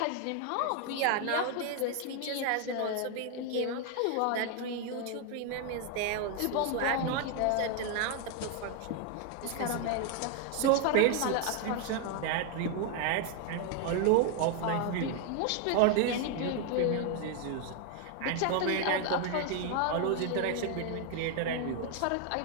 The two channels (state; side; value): different; both; correlation 0.01